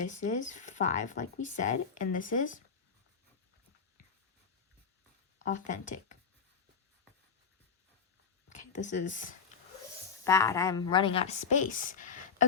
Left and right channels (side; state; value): right; quieter; 6.0 dB